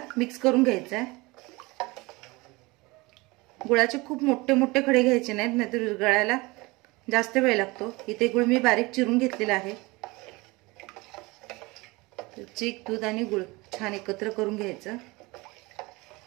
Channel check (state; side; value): quieter; left; 23.5 dB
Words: मिक्स करून घ्यायचा आहे. गुळाचे खूप मोठे मोठे खडे घ्यायचे नाहीत, नाहीतर विरघळायला जास्त वेळ लागतो. इथे गुळ मी बारीक चिरून घेतलेला आहे. चीक, दूध आणि गुळ छान एकत्र करून घ्यायचं.